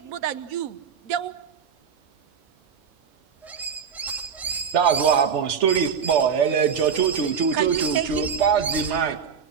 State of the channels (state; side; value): quieter; left; 6.9 dB